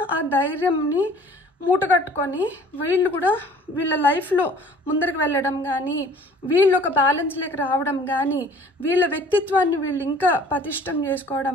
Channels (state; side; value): normal; both; correlation 0.51